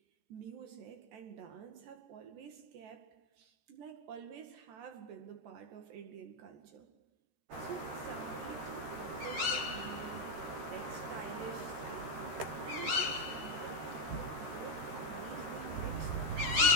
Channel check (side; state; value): left; late; 13 ms